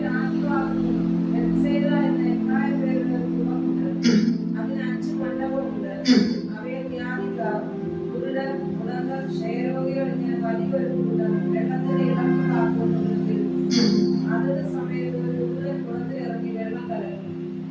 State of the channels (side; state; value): both; identical; correlation 1.00